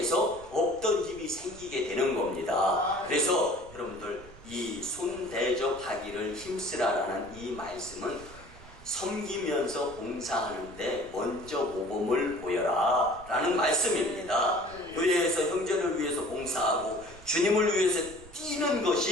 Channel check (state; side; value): noise; right; rumble, 19 dB below the sound